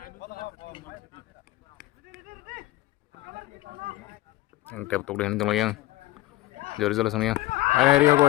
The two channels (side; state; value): right; quieter; 17.5 dB